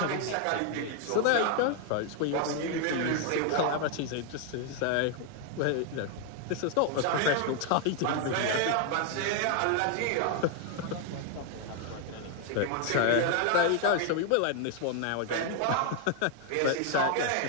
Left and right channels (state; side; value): different; both; correlation 0.00